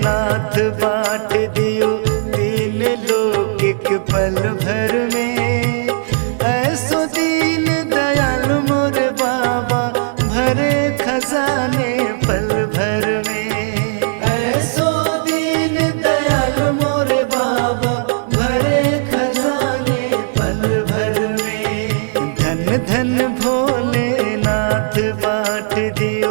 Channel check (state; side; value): silent; left; digital silence